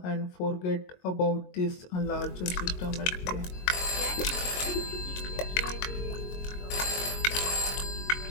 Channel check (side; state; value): right; late; 22 ms